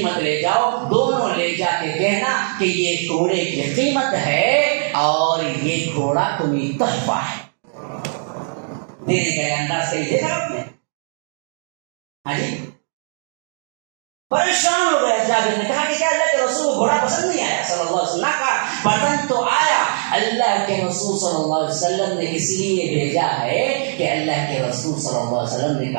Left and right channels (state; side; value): silent; left; digital silence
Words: لے جاؤ، دونوں لے جا کے کہنا کہ یہ گھوڑے کی قیمت ہے اور یہ گھوڑا تمہیں تحفہ ہے. دینے کا انداز کہیں دیکھا آپ نے؟ ہاں جی پریشان ہو گئے. جابر نے کہا کہ کیا اللہ کے رسول کو گھوڑا پسند نہیں آیا صلی اللہ علیہ وسلم؟ کہا پسند تو آیا. اللہ کے رسول صلی اللہ علیہ وسلم نے اس لیے بھیجا ہے کہ اللہ کے رسول صلی اللہ علیہ وسلم نے